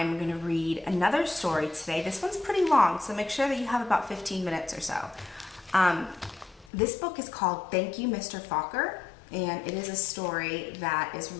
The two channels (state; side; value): drops out; right; at 6.7 s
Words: going to read another story today. This one's pretty long, so make sure that you have about 15 minutes or so. This book is called Thank You, Mr. Falker, and it is a story that is